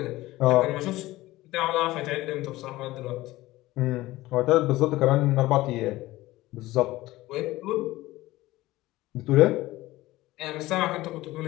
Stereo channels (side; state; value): right; quieter; 17.9 dB